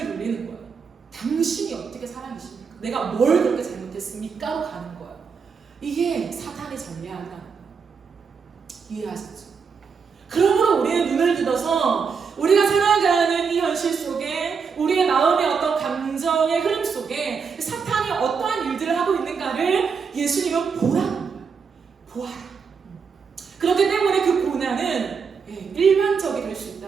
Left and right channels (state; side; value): quieter; left; 5.8 dB